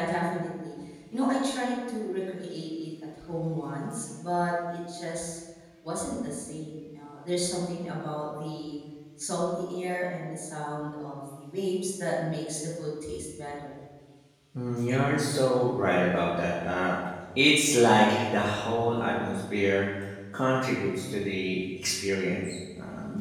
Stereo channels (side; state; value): both; identical; correlation 1.00